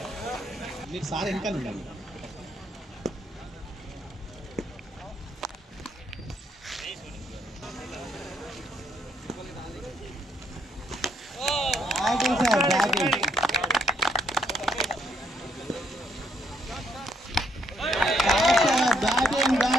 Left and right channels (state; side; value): normal; both; correlation 0.72